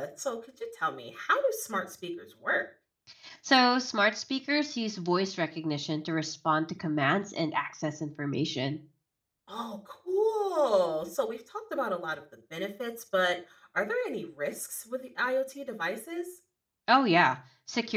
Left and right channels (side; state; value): both; identical; correlation 1.00